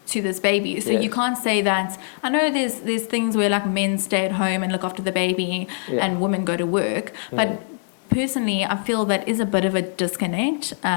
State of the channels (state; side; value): silent; right; digital silence